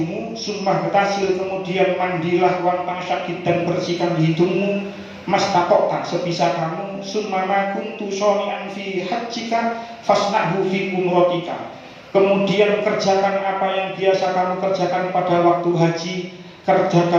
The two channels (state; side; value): identical; both; correlation 1.00